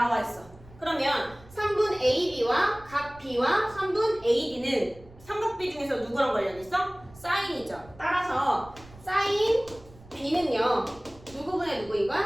있어. 그러면 3분 AB와 각 B와 3분 AD는 삼각비 중에서 누구랑 관련 있어? 사인이죠. 따라서 사인 B는요 누구분의 누구인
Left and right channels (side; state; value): right; noise; rumble, 22 dB below the sound